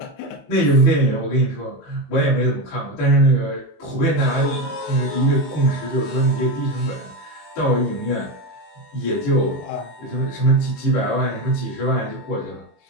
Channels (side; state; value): right; late; 21 ms